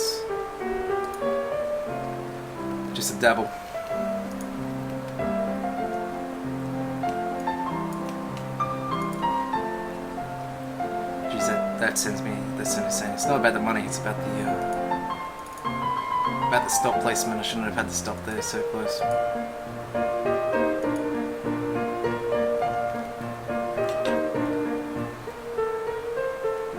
just a dabble. Geez, that sends me insane. It's not about the money, it's about the stop placement. I shouldn't have had the stop there so close.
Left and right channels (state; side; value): identical; both; correlation 1.00